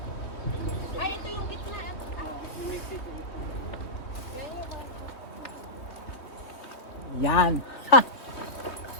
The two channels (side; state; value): right; late; 3.1 ms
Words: Ay, ito yung gitna. Yan. Ha!